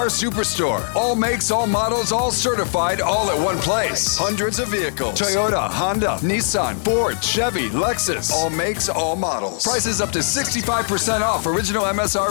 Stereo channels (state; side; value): silent; right; digital silence